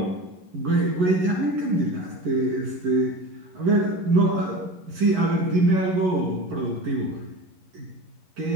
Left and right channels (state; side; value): late; left; 11 ms